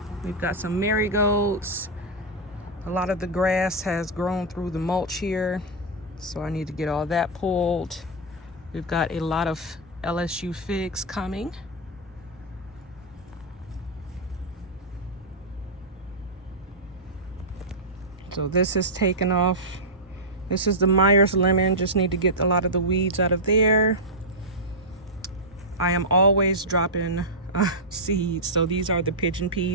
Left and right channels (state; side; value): normal; both; correlation -0.07